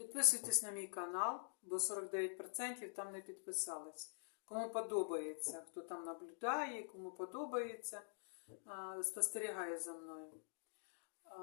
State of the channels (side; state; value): right; silent; digital silence